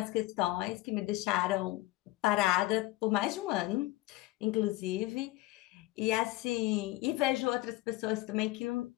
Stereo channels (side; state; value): right; quieter; 18.6 dB